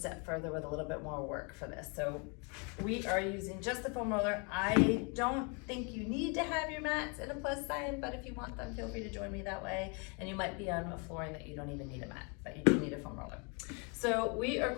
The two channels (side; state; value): right; quieter; 34.1 dB